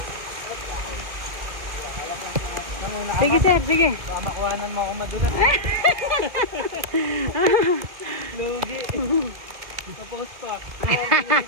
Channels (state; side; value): late; left; 2.1 ms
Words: Sige, sir, sige. Baka makuhanan mo ako madulas. Lugi. Tapos pa.